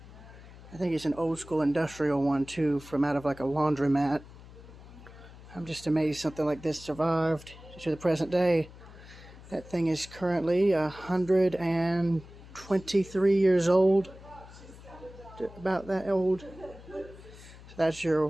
think it's an old school industrial one too, from out of like a laundromat. I'm just amazed something like this survived to the present day. That thing is currently 123 years old. About that old. So that's your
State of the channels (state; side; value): noise; left; hum, 18 dB below the sound